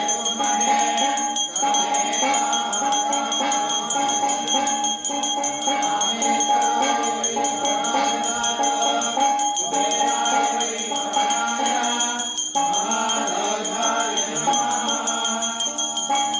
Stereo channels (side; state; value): both; identical; correlation 1.00